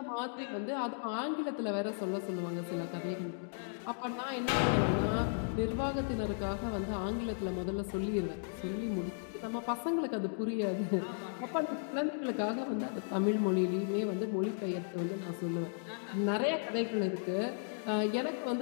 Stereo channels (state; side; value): silent; right; digital silence